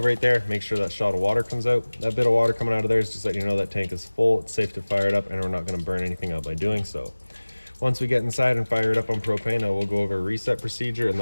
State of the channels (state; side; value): inverted; both; correlation -1.00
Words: right there. Make sure that shot of water comes out. That bit of water coming out of there is just letting you know that tank is full. It's safe to fire it up and we're not going to burn anything out by doing so. Once we get inside and fire it up on propane, we'll go over a reset procedure, and